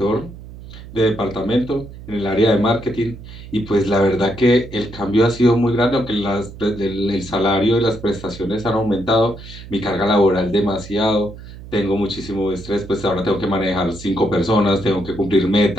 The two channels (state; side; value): noise; right; hum, 15 dB below the sound